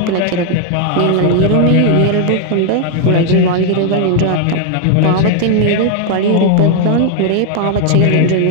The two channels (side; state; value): both; different; correlation 0.00